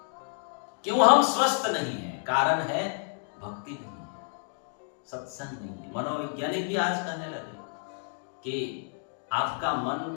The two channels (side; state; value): right; silent; 58 dB below the other